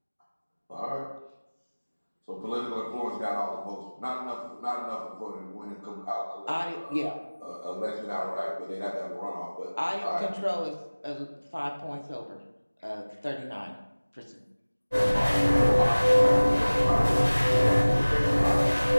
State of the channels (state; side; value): inverted; both; correlation -1.00